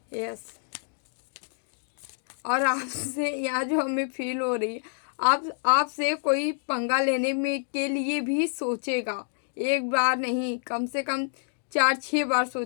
यस। और आपसे यहाँ जो हमें फील हो रही है, आपसे कोई पंगा लेने में के लिए भी सोचेगा, एक बार नहीं, कम से कम 4-6 बार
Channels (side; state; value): right; silent; 60 dB below the other